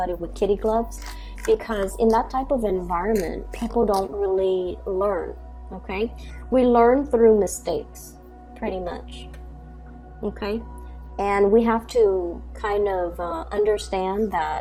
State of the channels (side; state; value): both; identical; correlation 1.00